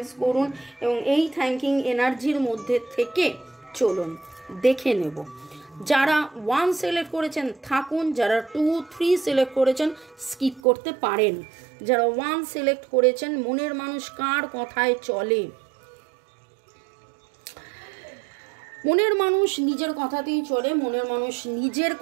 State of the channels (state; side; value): drops out; left; at 10.6 s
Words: করুন এবং এই থ্যাঙ্কিং এনার্জির মধ্যে থেকে চলুন। দেখে নেব যারা 1 সিলেক্ট করেছেন থাকুন, যারা 2, 3 সিলেক্ট করেছেন স্কিপ করতে পারেন। যারা 1 সিলেক্ট করেছেন, মনের মানুষ কার কথায় চলে? মনের মানুষ নিজের কথাতেই চলে, মনের মানুষ নিজের